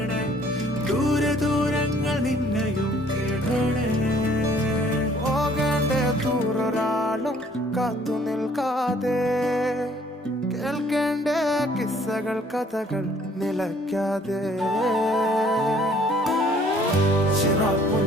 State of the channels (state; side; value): normal; both; correlation 0.59